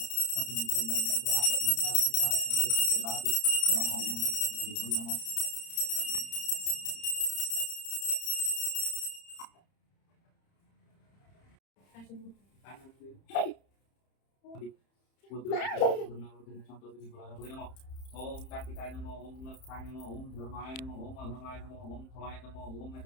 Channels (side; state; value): right; late; 30 ms